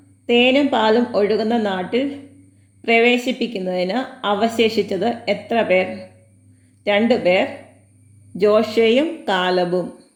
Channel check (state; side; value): identical; both; correlation 1.00